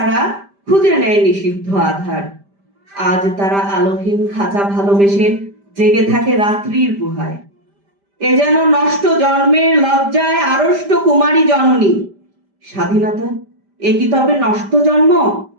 খুঁজে নেয় নিষিদ্ধ আধার। আজ তারা আলোহীন খাঁচা ভালোবেসে জেগে থাকে রাত্রির গুহায়। এ যেন নষ্ট জন্মের লজ্জায় আড়ষ্ট কুমারী জননী। স্বাধীনতা এ কি তবে নষ্ট জন্ম?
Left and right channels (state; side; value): late; left; 5.1 ms